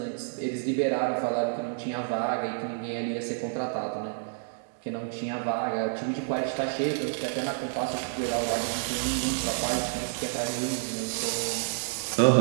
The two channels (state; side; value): silent; left; digital silence